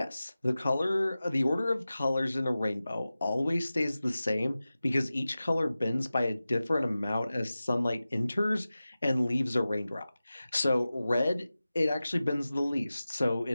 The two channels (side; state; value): both; inverted; correlation -0.96